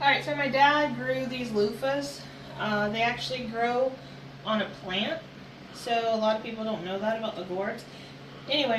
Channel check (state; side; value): identical; both; correlation 1.00